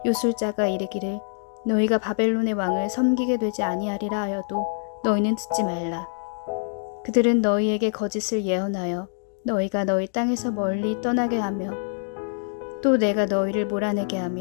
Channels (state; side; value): silent; right; digital silence